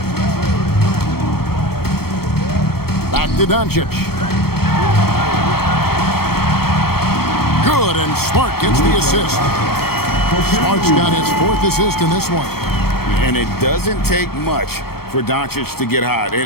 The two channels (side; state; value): right; late; 0.95 ms